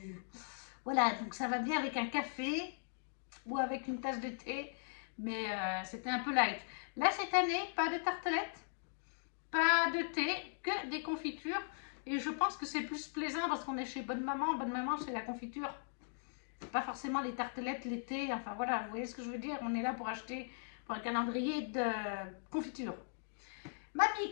Voilà, donc ça va bien avec un café ou avec une tasse de thé. Mais c'était un peu light. Là, cette année, pas de tartelettes, pas de thé, que des confitures. Et je pense que c'est plus plaisant parce qu'on est chez Bonne Maman. Bonne Maman, c'est la confiture. Pas forcément les tartelettes, les thés. Enfin voilà, vous voyez ce que je veux dire? On est là pour acheter pour un calendrier de confiture. Mamie,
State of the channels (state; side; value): silent; right; digital silence